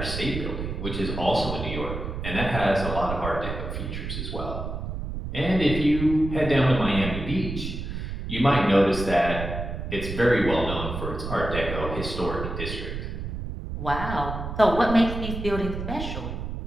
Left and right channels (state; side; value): noise; right; rumble, 6 dB below the sound